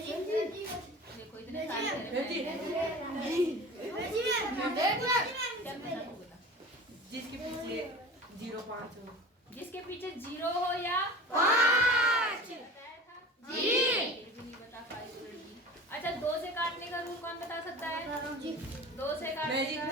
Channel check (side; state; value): both; normal; correlation 0.38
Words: देखो इतने सारे जिसके पीछे 0-5 हो। जिसके पीछे 0 हो या 5। जी। नहीं बता पाई तो लड़की। अच्छा, 2 से काटने का रूल कौन बता सकता है? 2 से काटने का